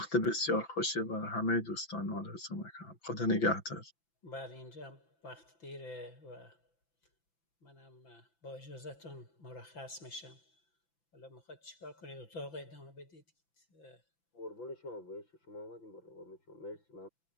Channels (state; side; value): late; right; 5.9 ms